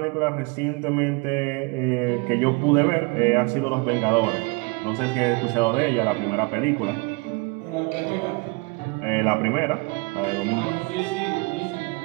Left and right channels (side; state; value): left; quieter; 28.1 dB